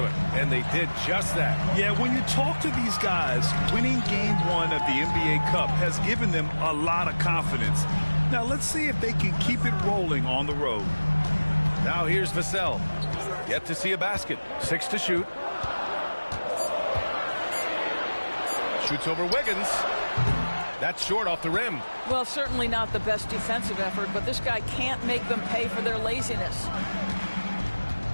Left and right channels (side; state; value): both; inverted; correlation -1.00